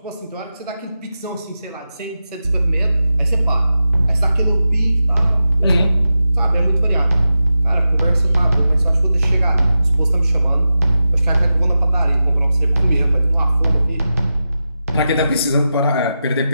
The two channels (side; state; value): both; inverted; correlation -0.91